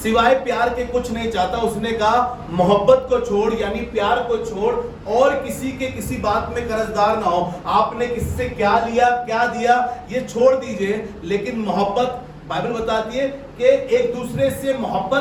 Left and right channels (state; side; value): identical; both; correlation 1.00